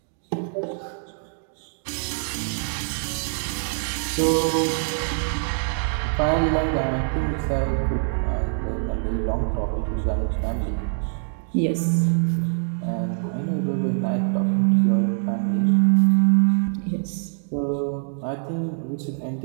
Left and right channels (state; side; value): silent; left; digital silence